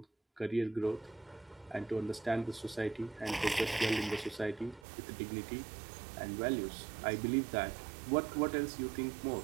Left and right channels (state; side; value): drops out; left; at 4.9 s